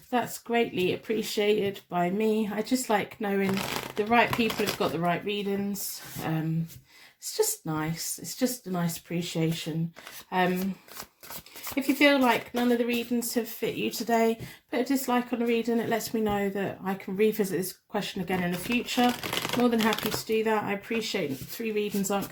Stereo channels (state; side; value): identical; both; correlation 1.00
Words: That's greatly appreciated by me. I just like knowing the right people have got the right readings. It's just nice. It's just a nice appreciation. If you feel like none of the readings have fit you today, put a dislike on the reading. It lets me know that I can revisit this question again in the future. More than happy to do that. I appreciate 3 readings aren't